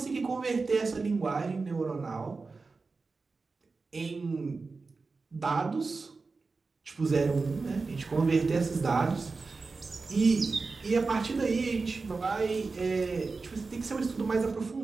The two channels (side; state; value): left; quieter; 4.1 dB